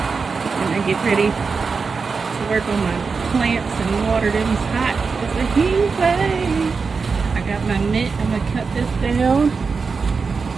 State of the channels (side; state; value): left; quieter; 4.9 dB